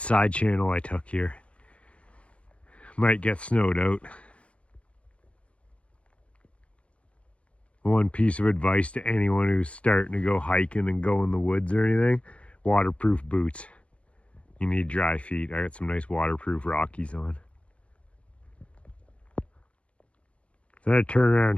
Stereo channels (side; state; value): right; late; 0.062 ms